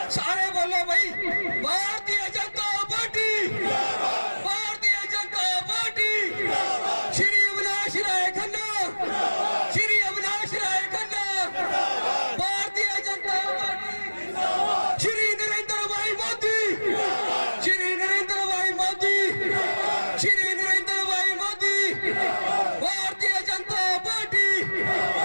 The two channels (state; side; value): inverted; both; correlation -1.00